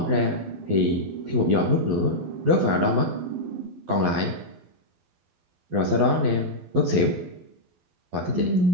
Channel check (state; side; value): late; left; 12 ms